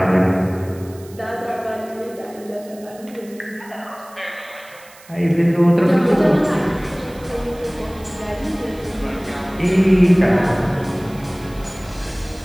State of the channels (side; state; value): right; noise; hiss, 23 dB below the sound